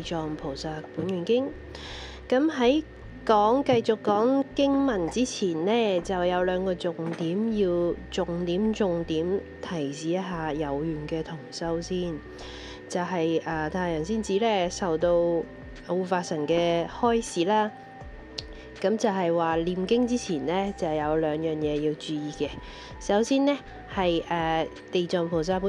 藏菩薩本願經。咁喺繼續講經文之前呢，就有兩個重點要重點提示一下有緣嘅同修先。就係太陽仙子呢受到護法神嘅開示啦。咁就係話念經之前呢，就有兩樣嘢要注意嘅。首先呢，係地藏菩薩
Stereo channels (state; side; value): identical; both; correlation 1.00